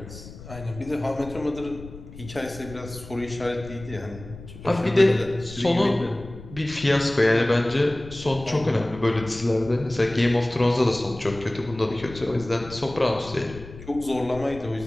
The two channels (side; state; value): left; noise; rumble, 15 dB below the sound